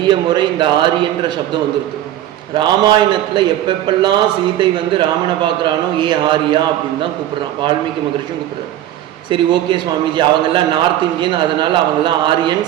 முறை இந்த ஆரியன்ற சப்தம் வந்துருக்கு. ராமாயணத்தில் எப்பெப்பெல்லாம் சீதை வந்து ராமனை பார்க்குறானோ ஏ ஆரியா அப்படின்னு தான் கூப்பிட்றான். வால்மீகி மகரிஷியும் கூப்பிட்றாரு. சரி, ஓகே சுவாமிஜி, அவங்கெல்லாம் நார்த் இந்தியன், அதனால் அவங்கெல்லாம்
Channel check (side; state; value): left; quieter; 12.8 dB